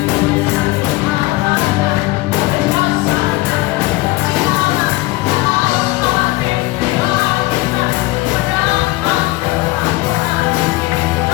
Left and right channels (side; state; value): right; quieter; 20.4 dB